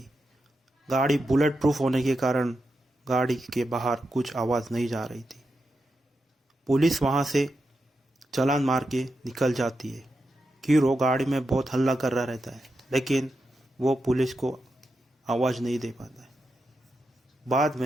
गाड़ी बुलेट प्रूफ होने के कारण गाड़ी के बाहर कुछ आवाज़ नहीं जा रही थी। पुलिस वहाँ से चालान मार के निकल जाती है। हीरो गाड़ी में बहुत हल्ला कर रहा रहता है, लेकिन वो पुलिस को आवाज़ नहीं दे पाता है। बाद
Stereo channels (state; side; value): normal; both; correlation 0.87